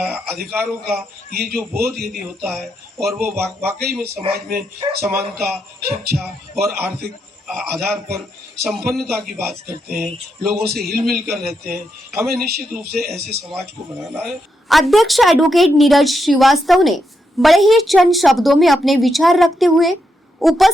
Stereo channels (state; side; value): normal; both; correlation 0.82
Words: का ये जो बोध यदि होता है और वो वाकई में समाज में समानता, शिक्षा और आर्थिक आधार पर संपन्नता की बात करते हैं, लोगों से हिल मिल कर रहते हैं। हमें निश्चित रूप से ऐसे समाज को बनाना है। अध्यक्ष एडवोकेट नीरज श्रीवास्तव ने बड़े ही चंद शब्दों में अपने विचार रखते हुए